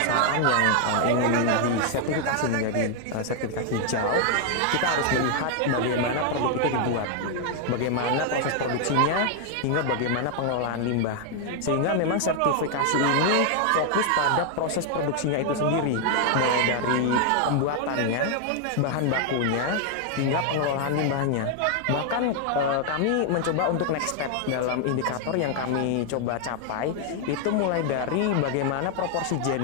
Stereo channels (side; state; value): both; different; correlation 0.00